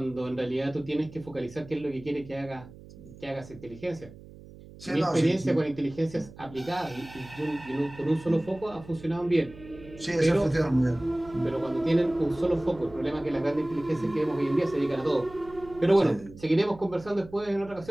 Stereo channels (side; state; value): right; noise; hum, 19 dB below the sound